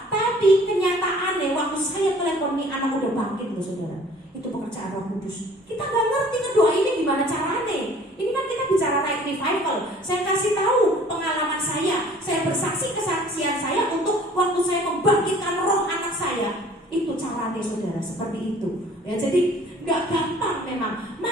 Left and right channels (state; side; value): normal; both; correlation 0.52